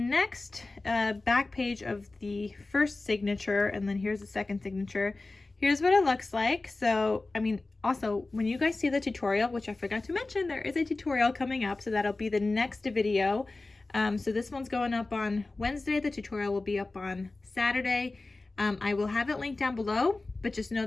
back page of the first signature, and then here's the second signature. Here's what it looks like. So, I mean, also, when you guys see the tutorial, which I forgot to mention, there is a tutorial coming up, so that'll be the next video. So this one's going up on Wednesday. The tutorial will be up on Saturday. I will have it linked down below, but just know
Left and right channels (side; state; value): right; quieter; 3.3 dB